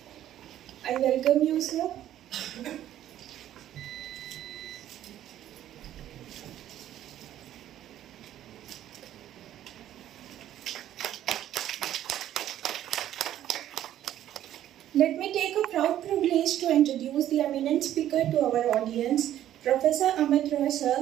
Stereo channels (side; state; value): left; quieter; 12.0 dB